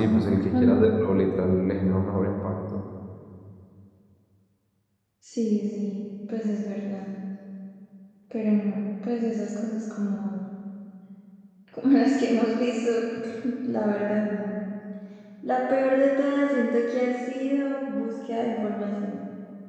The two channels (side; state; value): both; identical; correlation 1.00